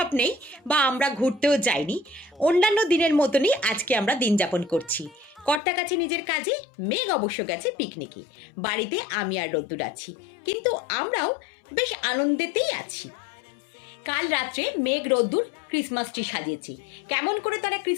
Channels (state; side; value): drops out; right; at 5.6 s